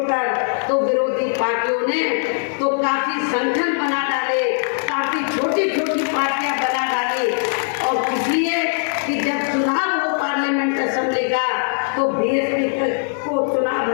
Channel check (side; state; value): right; silent; digital silence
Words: तो विरोधी पार्टियों ने तो काफी संगठन बना डाले, काफी छोटी पार्टियां बना डाली। और इसलिए कि जब चुनाव हो पार्लियामेंट असेंबली का तो बीएसपी को चुनाव